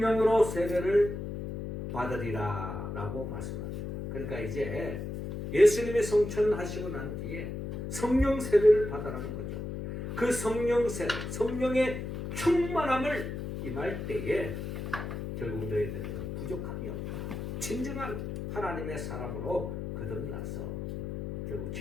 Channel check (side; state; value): left; noise; hum, 5 dB below the sound